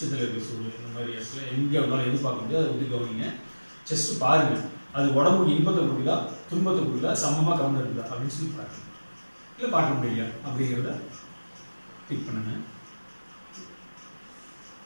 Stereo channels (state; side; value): inverted; both; correlation -1.00